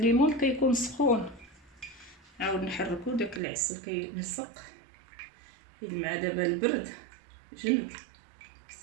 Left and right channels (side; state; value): left; drops out; at 3.4 s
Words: كيكون سخون، عاود نحركو داك العسل كيلصق حيت مع دابا البرد جمد.